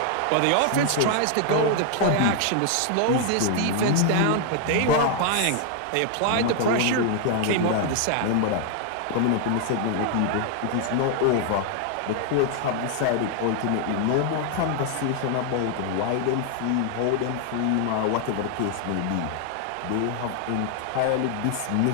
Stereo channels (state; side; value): different; both; correlation 0.00